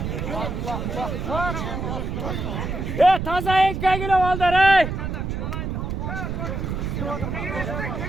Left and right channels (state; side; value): noise; right; rumble, 3 dB below the sound